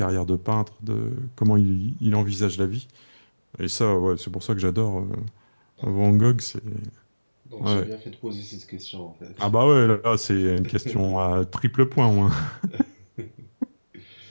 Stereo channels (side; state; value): both; inverted; correlation -1.00